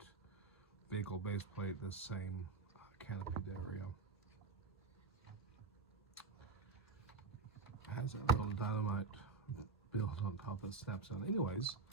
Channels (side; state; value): left; quieter; 4.5 dB